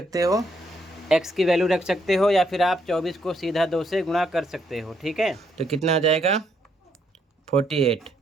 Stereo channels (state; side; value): normal; both; correlation 0.73